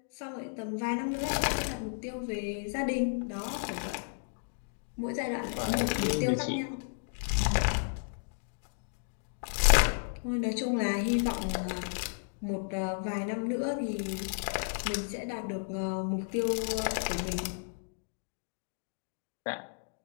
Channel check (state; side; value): silent; right; digital silence